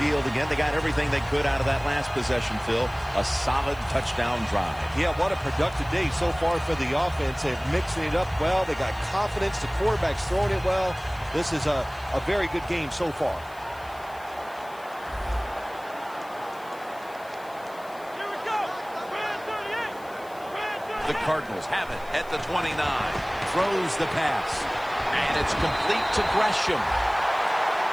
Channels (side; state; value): left; noise; hiss, 24 dB below the sound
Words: again. They got everything they could out of that last possession, Phil. A solid touchdown drive. Yeah, what a productive day so far for the offense. They're mixing it up well. They got confidence. The quarterback's throwing it well. This is a very good game so far. The Cardinals have it at the 29. Throws the pass. And it's complete to Gresham.